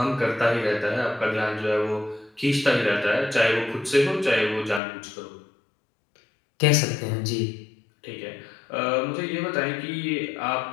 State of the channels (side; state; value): right; drops out; at 4.8 s